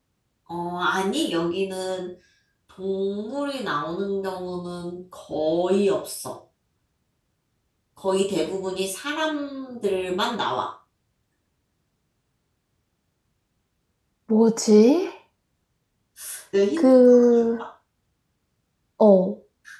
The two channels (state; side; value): identical; both; correlation 1.00